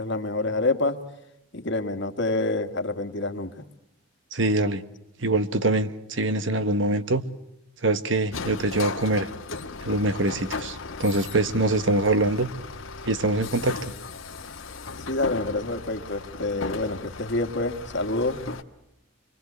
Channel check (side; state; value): both; normal; correlation -0.01